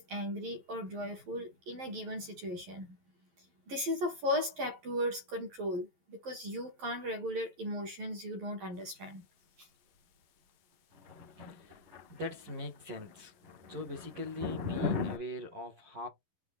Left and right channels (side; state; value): left; late; 11 ms